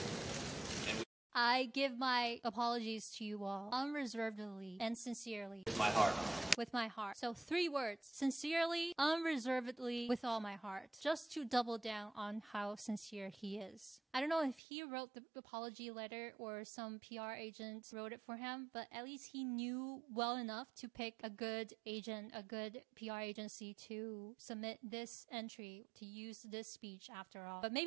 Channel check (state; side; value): drops out; left; at 14.6 s